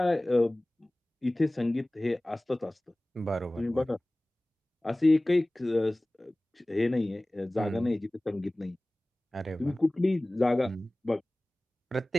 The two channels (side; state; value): both; normal; correlation 0.98